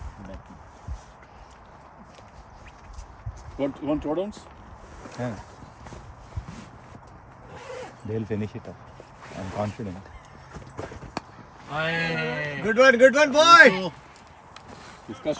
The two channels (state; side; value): identical; both; correlation 1.00